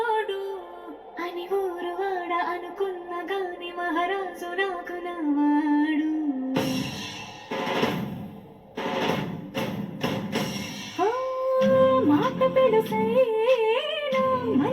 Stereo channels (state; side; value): identical; both; correlation 1.00